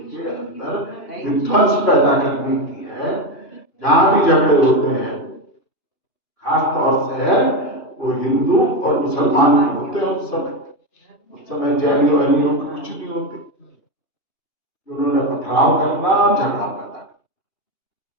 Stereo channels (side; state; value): right; late; 2.9 ms